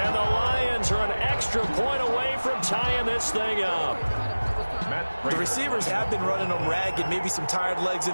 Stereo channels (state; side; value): inverted; both; correlation -1.00